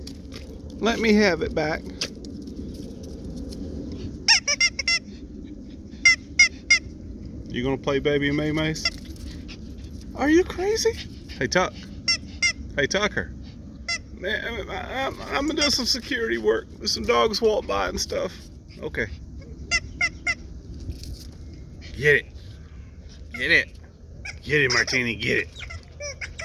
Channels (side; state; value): both; identical; correlation 1.00